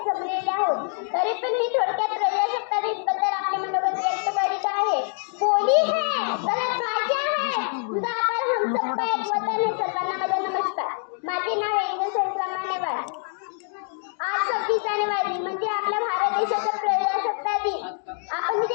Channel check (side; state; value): right; silent; 60 dB below the other